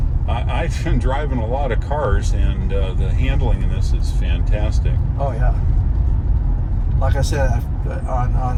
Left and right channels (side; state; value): both; identical; correlation 1.00